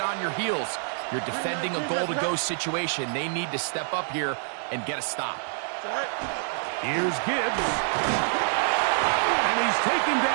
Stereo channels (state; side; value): silent; left; 60 dB below the other